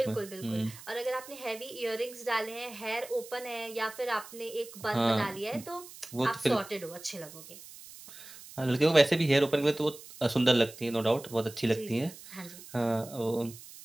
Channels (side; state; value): right; noise; hiss, 17 dB below the sound